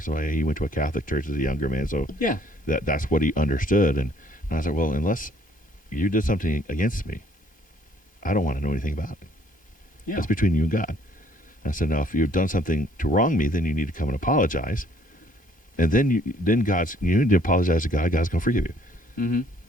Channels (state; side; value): late; right; 1.2 ms